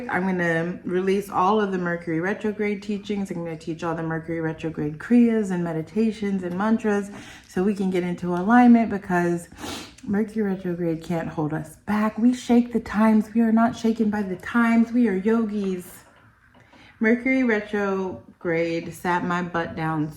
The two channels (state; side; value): identical; both; correlation 1.00